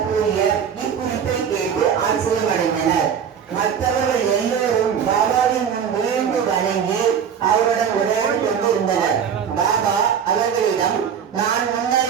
கூறிய இக்குறிப்பை கேட்டு ஆச்சரியமடைந்தனர். மற்றவர்கள் எல்லோரும் பாபாவின் முன் விழுந்து வணங்கி அவருடன் உரையாடி கொண்டிருந்தனர். பாபா அவர்களிடம், நான்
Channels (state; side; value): quieter; left; 7.7 dB